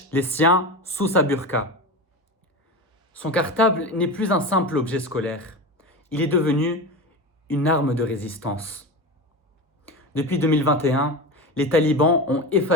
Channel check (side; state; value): both; normal; correlation 0.24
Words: les siens sous sa burqa. Son cartable n'est plus un simple objet scolaire. Il est devenu une arme de résistance. Depuis 2021, les talibans ont